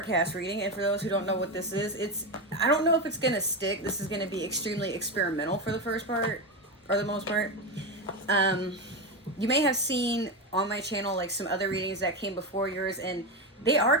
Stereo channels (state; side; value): normal; both; correlation 0.14